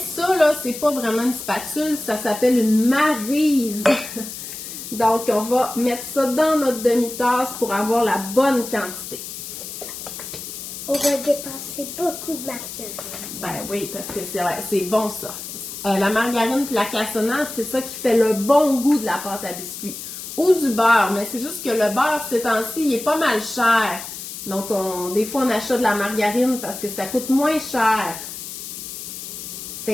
là, c'est pas vraiment une spatule, ça s'appelle une maryse. Donc, on va mettre ça dans notre demi-tasse pour avoir la bonne quantité. On va dépenser beaucoup de margarine. Ben oui, parce que c'est bon ça. La margarine et la cassonade, c'est ça qui fait le bon goût de la pâte à biscuits. Ou du beurre, mais c'est juste que le beurre, ces temps-ci, il est pas mal cher. Donc, des fois, on achète de la margarine parce que ça coûte moins cher.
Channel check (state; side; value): noise; left; hiss, 9 dB below the sound